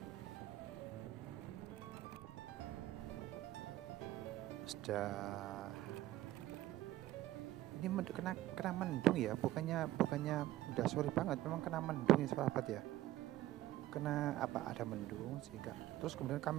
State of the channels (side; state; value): left; quieter; 15.0 dB